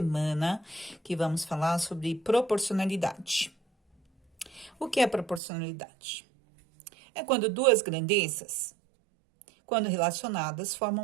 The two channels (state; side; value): drops out; left; at 5.4 s